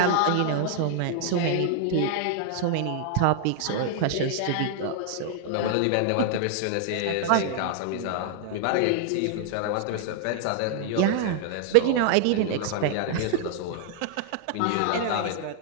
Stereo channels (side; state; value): both; different; correlation -0.01